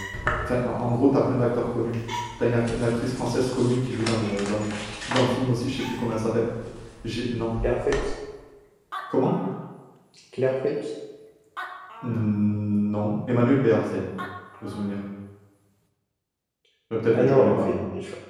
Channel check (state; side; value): identical; both; correlation 1.00